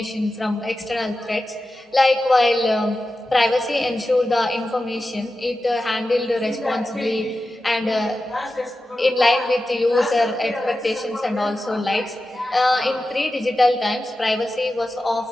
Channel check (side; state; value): both; normal; correlation 0.92